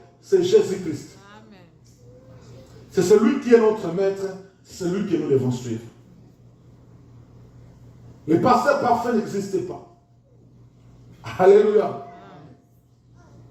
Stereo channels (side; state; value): both; identical; correlation 1.00